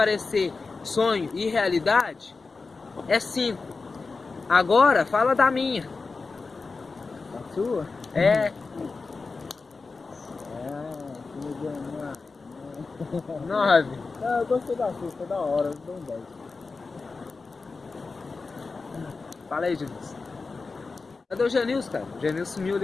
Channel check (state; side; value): quieter; right; 4.2 dB